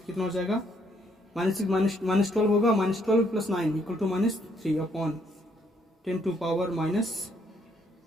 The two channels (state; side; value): normal; both; correlation 0.70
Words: कितना हो जाएगा -12 होगा, -12 + 9 = -3 अपॉन 10 टू पावर